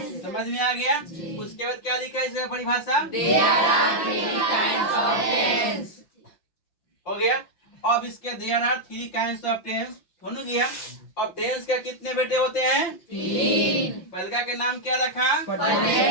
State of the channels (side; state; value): right; late; 5.8 ms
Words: समझ में आ गया? उसके बाद क्या लिखा है इसका परिभाषा? हो गया। अब इसके there are 3 kinds of tense हो गया। अब टेंस का कितने बेटे होते हैं? 3। पहला के नाम क्या रखा?